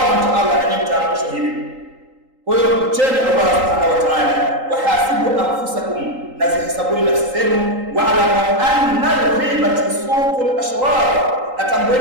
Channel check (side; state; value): left; late; 3.8 ms